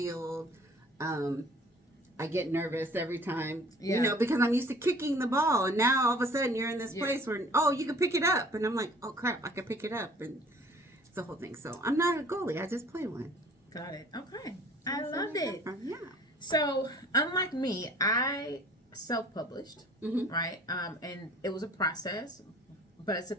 I get nervous every time, because I'm used to kicking the ball. And now all of a sudden you're in this place where, you can pick it up. And I'm like, oh, crap, I can pick it up. And it's the whole thing. So I'm not a goalie. I just play one. Got it. Okay. I loved it. Yeah. So, unlike me, I self-published, right? And it was a process, but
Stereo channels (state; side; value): normal; both; correlation 0.51